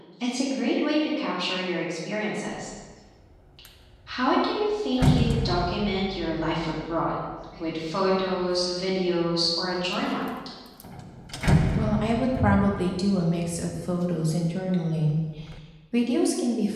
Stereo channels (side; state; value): both; identical; correlation 1.00